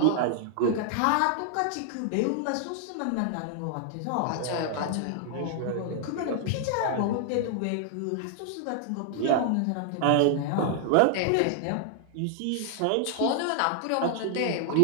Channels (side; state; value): both; different; correlation 0.00